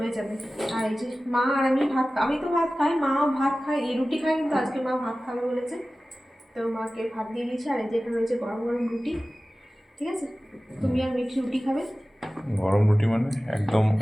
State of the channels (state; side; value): normal; both; correlation 0.96